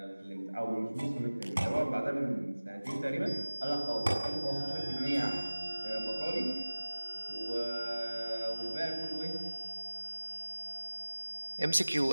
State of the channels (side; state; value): both; inverted; correlation -1.00